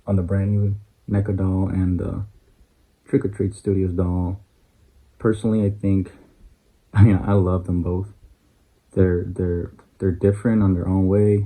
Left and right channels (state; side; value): identical; both; correlation 1.00